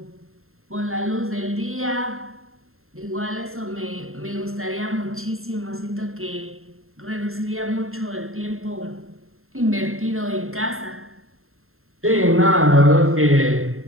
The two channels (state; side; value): late; left; 0.61 ms